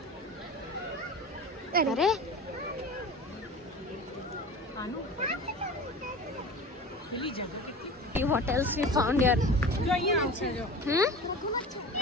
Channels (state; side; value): normal; both; correlation 0.34